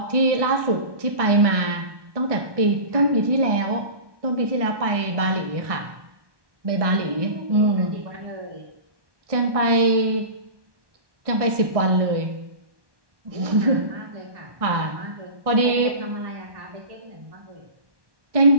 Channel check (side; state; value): left; late; 1.6 ms